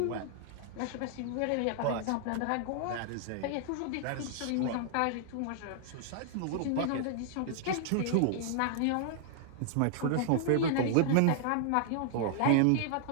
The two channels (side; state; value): both; different; correlation -0.01